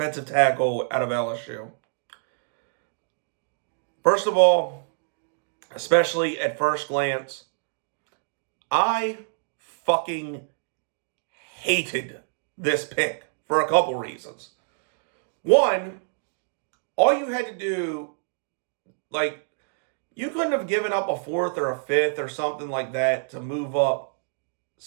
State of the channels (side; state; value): left; silent; digital silence